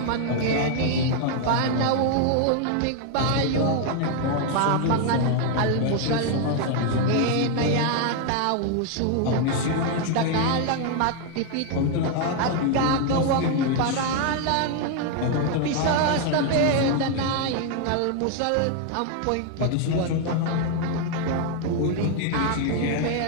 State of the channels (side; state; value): both; different; correlation 0.00